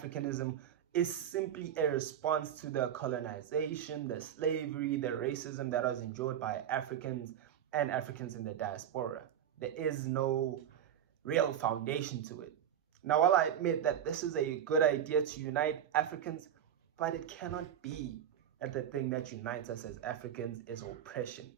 is simply a response to the colonization, the slavery, the racism that was endured by Africans and Africans in the diaspora. There is no real foundation to it. Now, while I admit that this is a good idea to unite Africans, but it cannot be that the thing that unites us as Africans is oppression.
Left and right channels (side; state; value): left; quieter; 9.7 dB